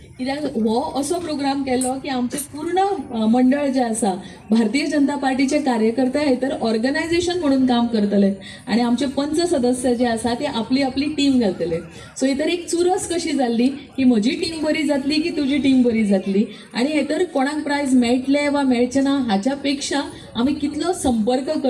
कित्याक हो असो प्रोग्राम केलो की आमचे पूर्ण मंडळ जे आसा भारतीय जनता पार्टीचे कार्यकर्ते हेतर ऑर्गनायझेशन म्हणून काम करतले आणि आमचे पंच सदस्य जे आसा ते आपली आपली टीम घालतले. सो हेतर एक चुरस कशी जाल्ली की म्हजी टीम बरी जातली की तुजी टीम बरी जातली. आणि हेतर कोणाक प्रायज मेळटले वा मेळचे ना हाच्या पेक्षा आमी कितलो संपर्क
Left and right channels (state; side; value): identical; both; correlation 1.00